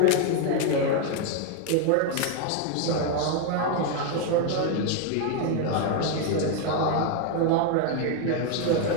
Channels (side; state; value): both; different; correlation 0.01